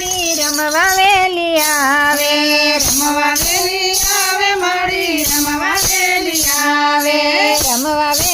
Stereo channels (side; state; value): both; identical; correlation 1.00